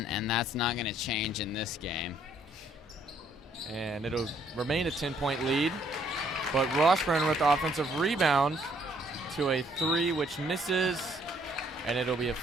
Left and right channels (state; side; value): normal; both; correlation 0.66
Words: and that's not going to change in this game. And it'll remain a 10-point lead, but Washburn with the offensive rebound to a 3, which misses, and it'll be a